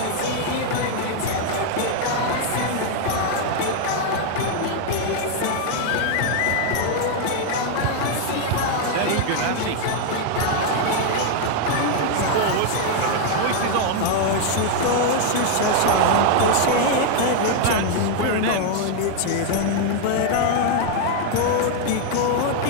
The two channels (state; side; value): different; both; correlation 0.00